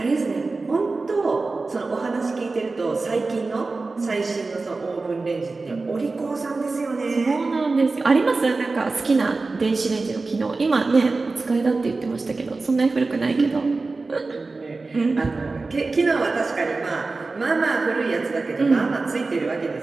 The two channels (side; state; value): left; quieter; 3.7 dB